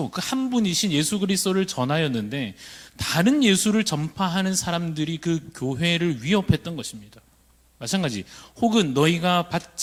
그 한 분이신 예수 그리스도를 전하였는데 다른 예수를 전파하는 사람들이 그 교회를 위협했던 것입니다. 마찬가지, 혹은 너희가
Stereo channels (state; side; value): identical; both; correlation 1.00